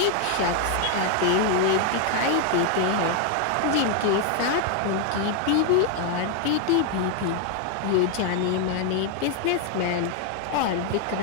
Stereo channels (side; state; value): both; different; correlation 0.00